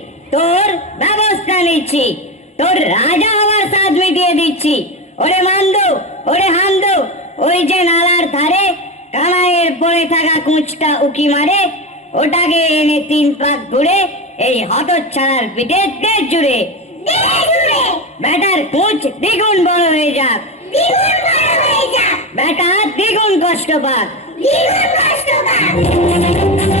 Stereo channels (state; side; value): normal; both; correlation 0.19